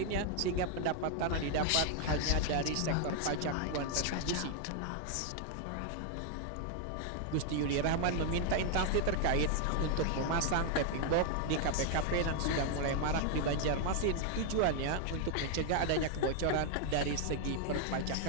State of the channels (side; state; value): both; different; correlation 0.00